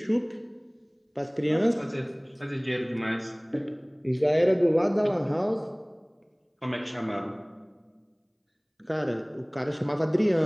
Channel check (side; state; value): both; identical; correlation 1.00